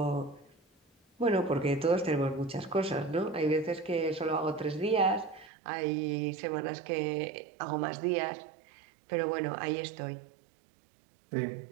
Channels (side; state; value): left; drops out; at 5.5 s